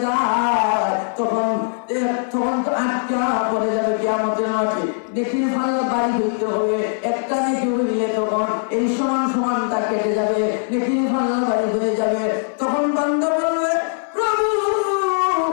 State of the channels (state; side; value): silent; right; digital silence